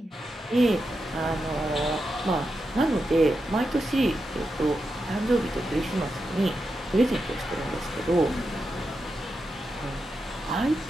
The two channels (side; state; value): both; normal; correlation 0.87